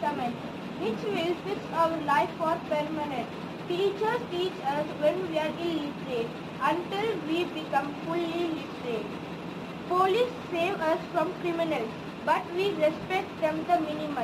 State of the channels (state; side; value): identical; both; correlation 1.00